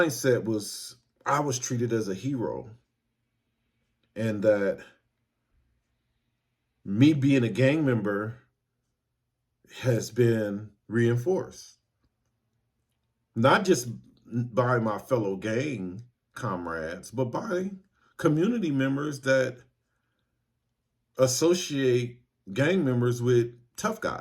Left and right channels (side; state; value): both; identical; correlation 1.00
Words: was, I was treated as a hero. And that me being a gang member has been reinforced. Not just by my fellow gang comrades, but by community members that associate gang members with tough